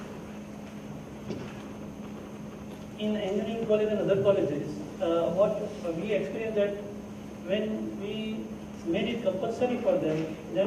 In engineering college and other colleges, what we experienced that when we made it compulsory for them, then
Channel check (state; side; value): identical; both; correlation 1.00